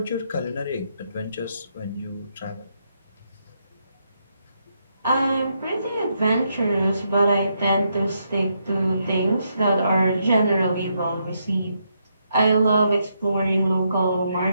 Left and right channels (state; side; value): inverted; both; correlation -0.79